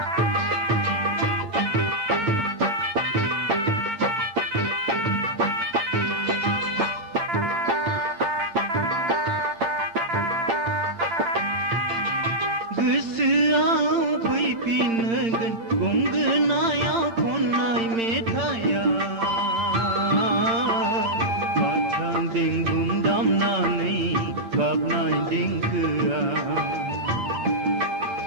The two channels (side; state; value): left; late; 8.8 ms